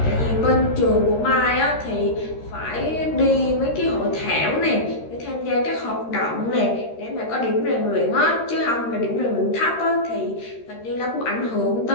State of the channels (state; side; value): late; right; 13 ms